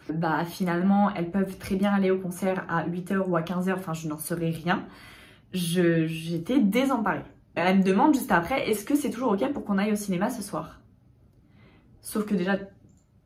bah finalement elles peuvent très bien aller au concert à 8h ou à 15h, enfin je n'en saurais rien. J'étais désemparée. Elle me demande juste après, est-ce que c'est toujours ok pour qu'on aille au cinéma ce soir? Sauf que déjà,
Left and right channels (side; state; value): both; identical; correlation 1.00